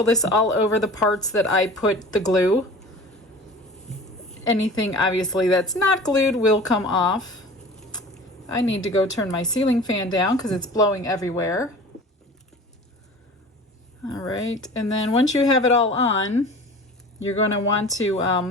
this all over the parts that I put the glue. Anything obviously that's not glued will come off. I need to go turn my ceiling fan down because it's blowing everywhere. All right, and then once you have it all on, you're going to want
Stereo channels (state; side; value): normal; both; correlation 0.40